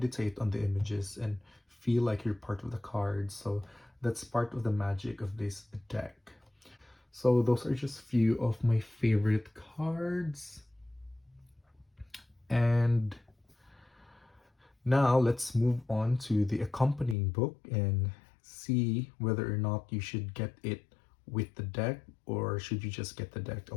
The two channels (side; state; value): right; drops out; at 17.2 s